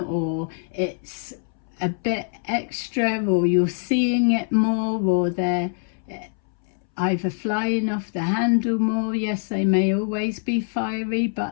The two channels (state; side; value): silent; right; 63 dB below the other